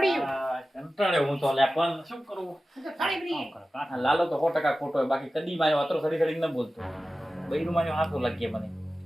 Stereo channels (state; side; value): normal; both; correlation 0.95